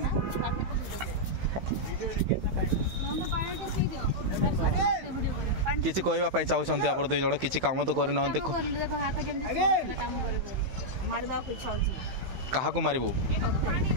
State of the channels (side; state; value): left; late; 16 ms